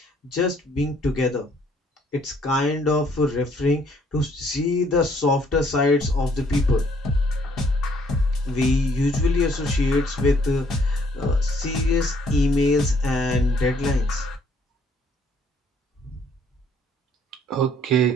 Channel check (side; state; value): both; normal; correlation 0.64